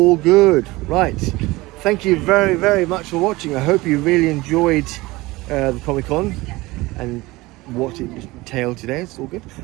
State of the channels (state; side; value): quieter; left; 20.8 dB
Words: good, right? Thank you very, very much for watching. I hope you really enjoyed the Comic Con and what it entailed today. It's all good,